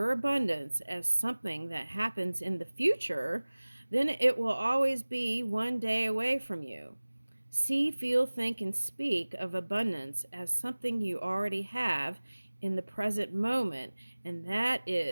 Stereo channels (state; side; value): inverted; both; correlation -1.00